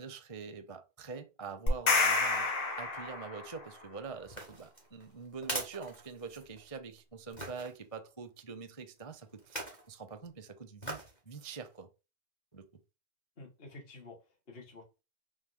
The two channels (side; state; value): right; late; 2.1 ms